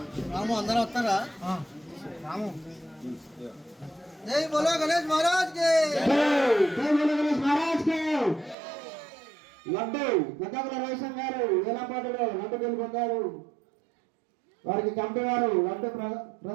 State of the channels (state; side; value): drops out; left; at 8.6 s